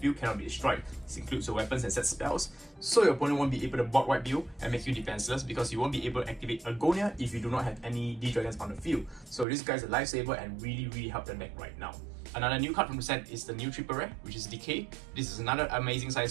cannot be destroyed. This includes your weapons and set spells, so your opponent won't be able to board wipe you and make you defenseless because you won't be able to activate Agonia if you do not have any D-Dragons on the field. So this guy's a lifesaver and really help the deck right now. Another new card from the set is the new triple rare, which is Decay. This is another amazing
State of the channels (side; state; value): left; drops out; at 9.5 s